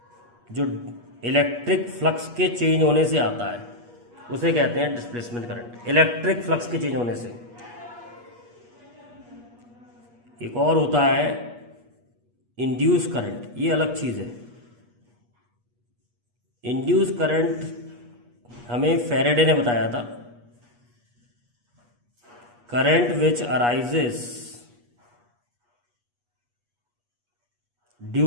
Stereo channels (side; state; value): left; late; 8.3 ms